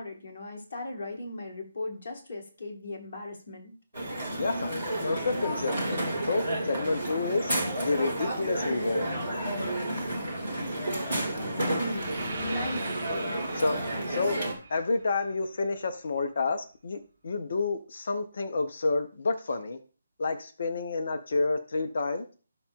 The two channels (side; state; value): both; inverted; correlation -0.83